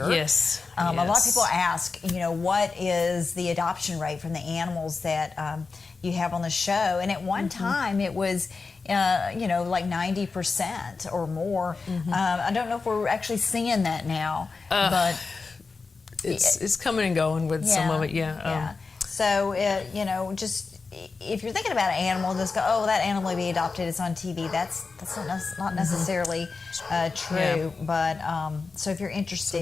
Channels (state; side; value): quieter; right; 4.4 dB